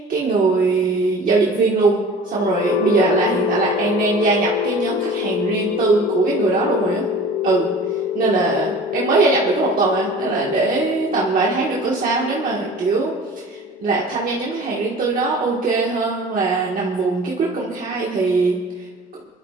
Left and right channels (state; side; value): normal; both; correlation 0.42